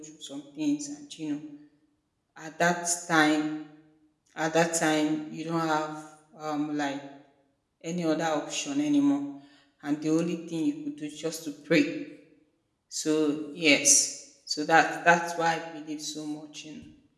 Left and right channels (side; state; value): both; identical; correlation 1.00